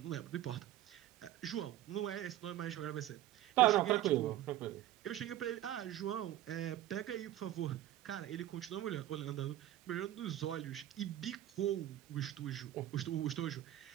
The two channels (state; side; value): quieter; left; 13.6 dB